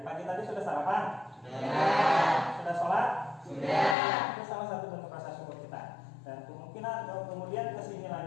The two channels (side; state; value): right; drops out; at 4.0 s